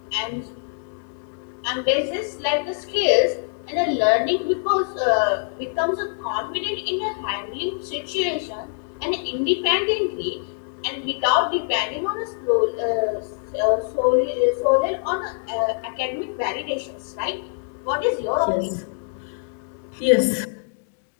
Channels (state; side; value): silent; right; digital silence